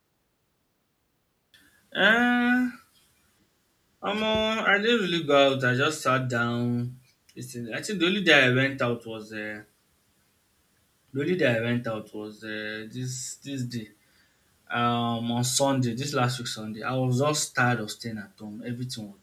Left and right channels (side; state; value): both; identical; correlation 1.00